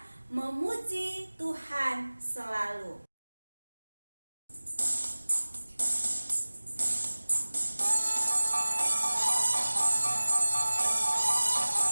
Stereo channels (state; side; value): inverted; both; correlation -1.00